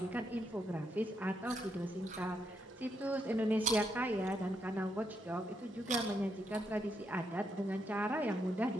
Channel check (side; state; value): both; normal; correlation 0.79